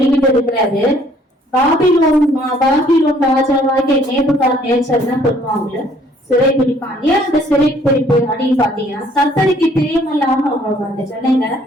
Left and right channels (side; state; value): both; normal; correlation 0.61